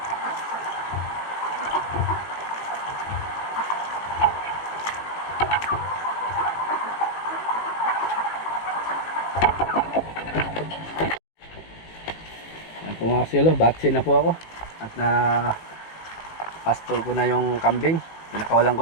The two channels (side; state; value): right; late; 18 ms